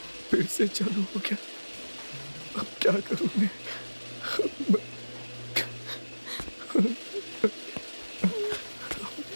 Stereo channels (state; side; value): inverted; both; correlation -1.00